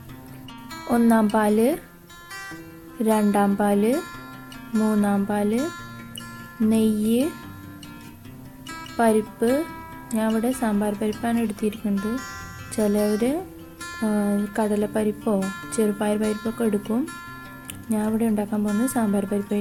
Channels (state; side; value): identical; both; correlation 1.00